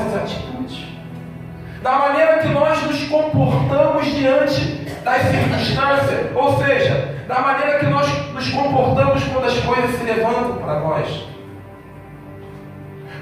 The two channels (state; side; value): identical; both; correlation 1.00